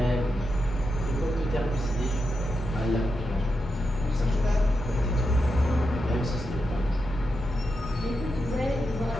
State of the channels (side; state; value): both; normal; correlation 0.87